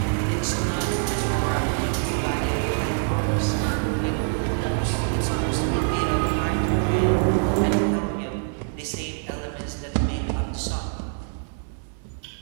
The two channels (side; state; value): left; silent; 62 dB below the other